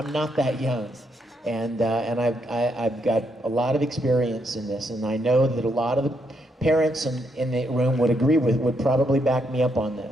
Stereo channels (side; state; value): both; normal; correlation 0.77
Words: not that young. And I've got a lot of experience in this, and I know that a lot of the parents in the room would probably back me up on